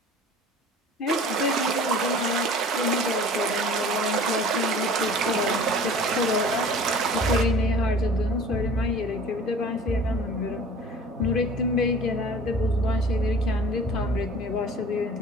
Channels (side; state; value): both; normal; correlation 0.45